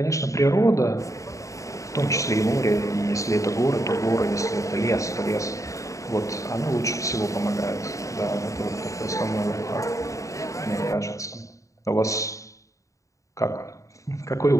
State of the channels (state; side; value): late; right; 0.16 ms